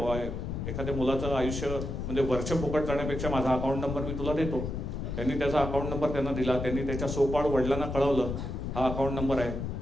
एखाद्या मुलाचं आयुष्य म्हणजे वर्ष फुकट जाण्यापेक्षा माझा अकाउंट नंबर मी तुला देतो. त्यांनी त्याचा अकाउंट नंबर त्यांना दिला. त्यांनी त्याच्या सोपाळ वडिलांना कळवलं हा अकाउंट नंबर आहे.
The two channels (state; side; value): noise; left; rumble, 4 dB below the sound